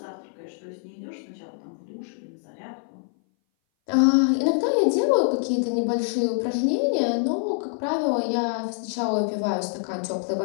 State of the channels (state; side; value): silent; right; 59 dB below the other